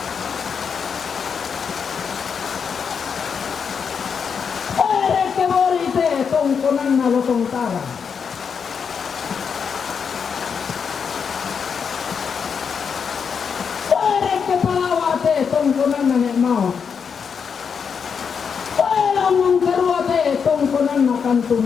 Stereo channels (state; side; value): quieter; right; 6.4 dB